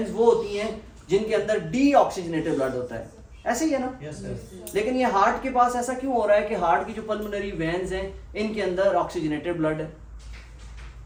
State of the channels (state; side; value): identical; both; correlation 1.00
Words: वो होती हैं जिनके अंदर डीऑक्सीजनेटेड ब्लड होता है, ऐसे ही है ना? Yes, yes. लेकिन ये हार्ट के पास ऐसा क्यों हो रहा है कि हार्ट की जो पल्मोनरी वेन्स हैं इनके अंदर ऑक्सीजनेटेड ब्लड है?